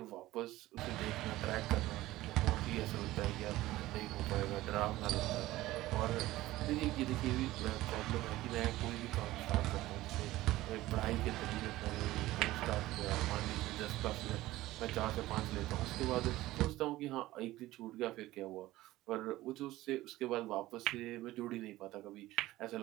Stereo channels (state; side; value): quieter; left; 16.8 dB